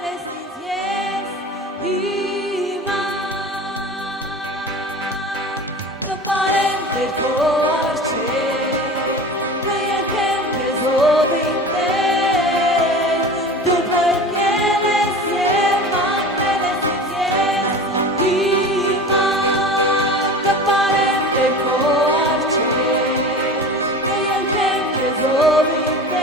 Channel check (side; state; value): both; normal; correlation 0.35